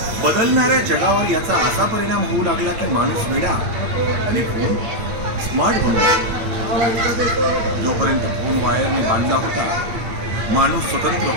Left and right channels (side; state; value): left; late; 8.6 ms